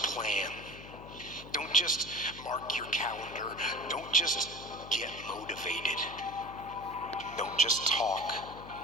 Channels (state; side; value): noise; left; hum, 15 dB below the sound